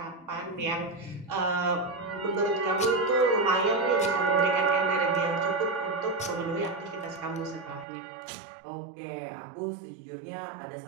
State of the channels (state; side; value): drops out; left; at 7.9 s